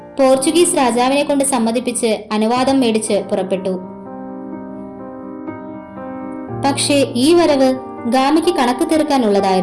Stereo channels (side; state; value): both; identical; correlation 1.00